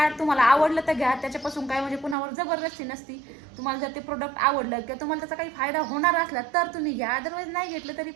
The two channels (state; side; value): drops out; left; at 2.1 s